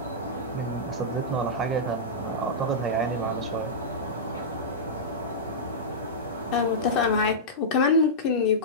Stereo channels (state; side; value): normal; both; correlation -0.13